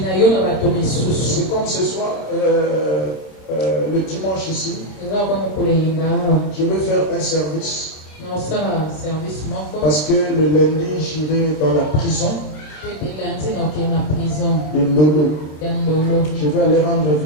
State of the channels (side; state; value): right; late; 27 ms